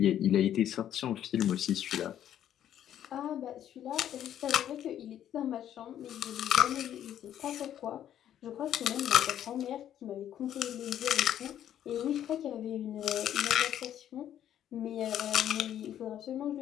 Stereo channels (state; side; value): quieter; right; 10.8 dB